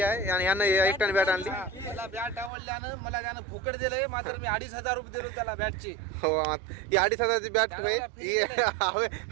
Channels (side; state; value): left; drops out; at 2.5 s